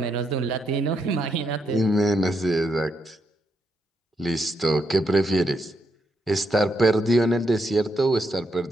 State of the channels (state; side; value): normal; both; correlation 0.79